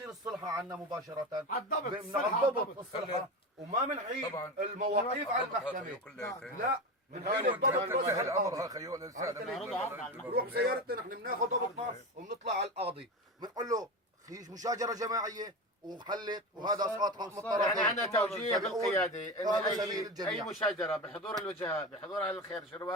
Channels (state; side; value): normal; both; correlation 0.23